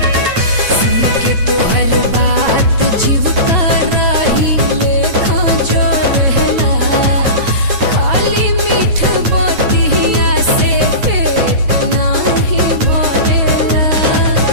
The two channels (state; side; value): late; left; 9.1 ms